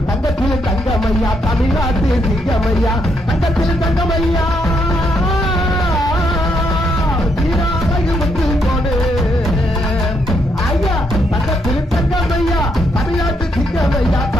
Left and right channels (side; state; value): both; normal; correlation 0.76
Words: சிங்கமையா தமிழ்நாட்டு சிங்கமையா தங்கத்தில் தங்கமையா வீராழகு முத்து கோடு ஐயா தங்கத்தில் தங்கமையா தமிழ்நாட்டு சிங்கமையா